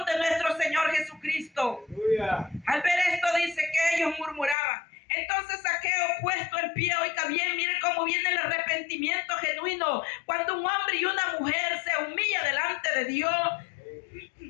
de nuestro Señor Jesucristo. Al ver esto dice que ellos murmuraban. Entonces Zaqueo, puesto en pie, oiga bien, mire cómo viene el arrepentimiento genuino. Cuando un hombre y una mujer se humilla delante de Dios,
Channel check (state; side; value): drops out; right; at 4.5 s